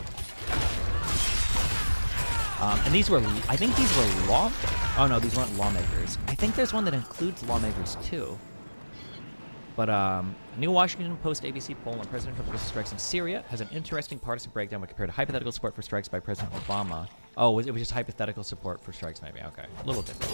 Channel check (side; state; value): both; inverted; correlation -1.00